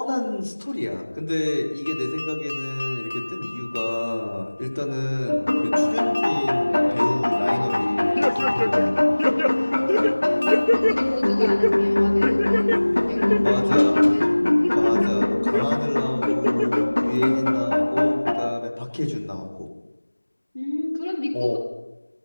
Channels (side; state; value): both; inverted; correlation -1.00